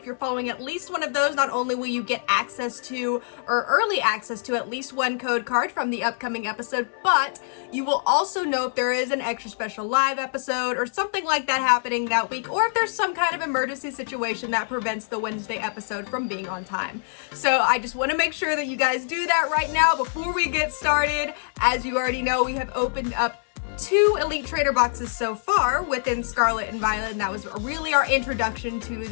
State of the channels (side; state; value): right; silent; 62 dB below the other